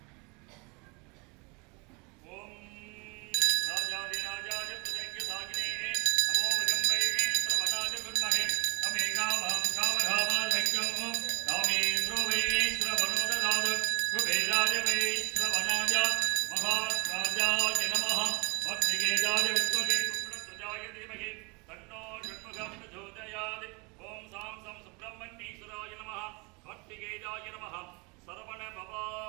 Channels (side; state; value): left; quieter; 29.5 dB